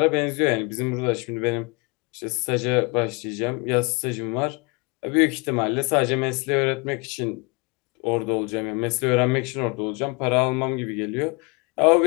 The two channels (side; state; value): right; quieter; 29.3 dB